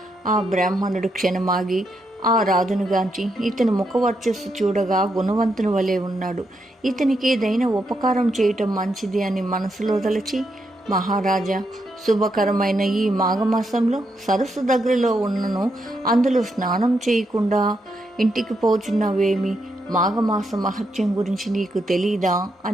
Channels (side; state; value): both; normal; correlation 0.81